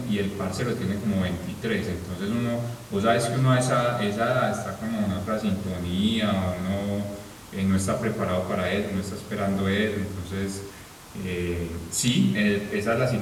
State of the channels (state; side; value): identical; both; correlation 1.00